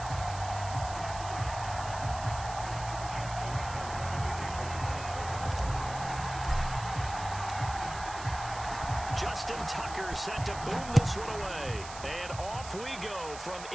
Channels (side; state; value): right; noise; hiss, 13 dB below the sound